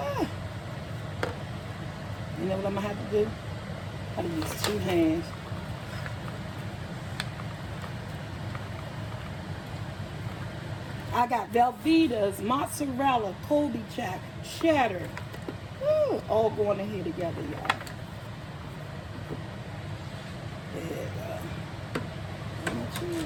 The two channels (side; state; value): both; identical; correlation 1.00